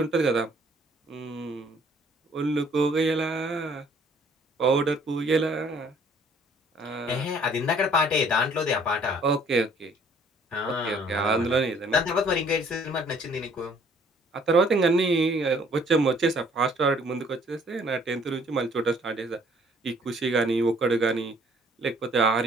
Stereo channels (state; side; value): normal; both; correlation 0.59